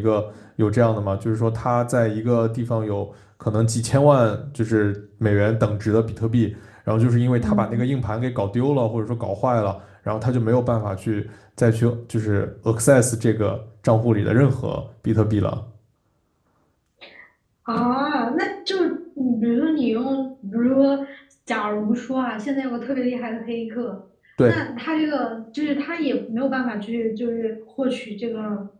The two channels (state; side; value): identical; both; correlation 1.00